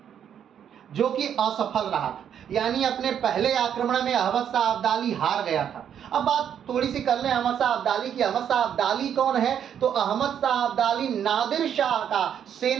जो कि असफल रहा था। यानी अपने पहले आक्रमण में अहमद शाह अब्दाली हार गया था। अब बात थोड़ी सी कर लें अहमद शाह अब्दाली की। अहमद शाह अब्दाली कौन है? तो अहमद शाह अब्दाली नादिर शाह का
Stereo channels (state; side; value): quieter; left; 8.9 dB